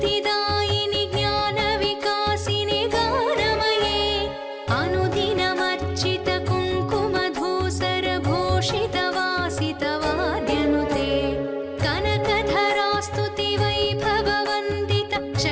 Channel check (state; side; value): identical; both; correlation 1.00